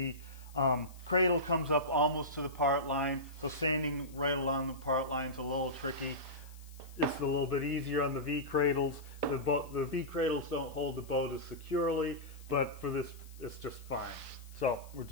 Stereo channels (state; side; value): noise; left; hiss, 23 dB below the sound